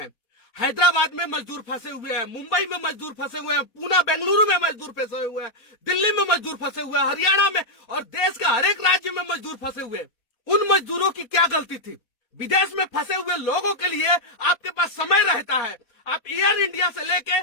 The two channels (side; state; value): right; late; 4.1 ms